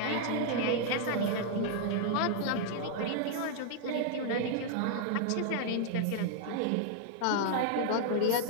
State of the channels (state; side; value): different; both; correlation -0.01